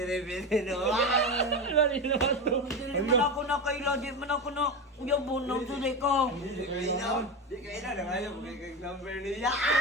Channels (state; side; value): normal; both; correlation 0.19